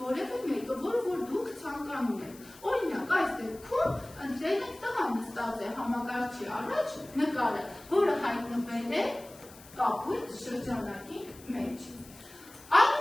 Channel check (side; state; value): left; noise; hiss, 21 dB below the sound